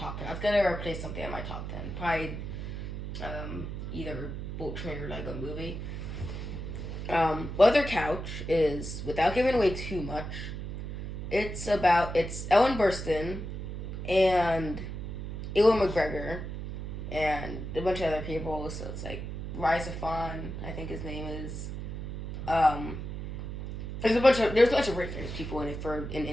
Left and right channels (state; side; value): noise; right; hum, 6 dB below the sound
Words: 10. That's going to replace something in my top 10. Probably either Bolt Train or Lego Movie. Mother Couch is, without giving away too much, it's Ellen Burstyn and Ewan McGregor and a bunch of other people. So it's like Rise Fawn, I think his name is. There's a bunch of very famous people in it for an